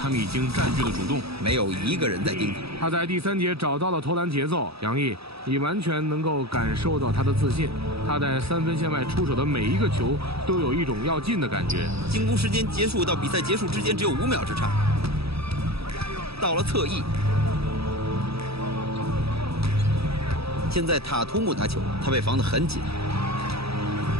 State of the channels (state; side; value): late; left; 0.77 ms